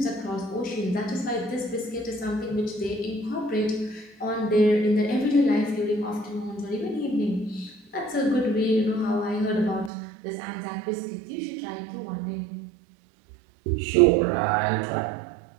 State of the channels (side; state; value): left; drops out; at 9.9 s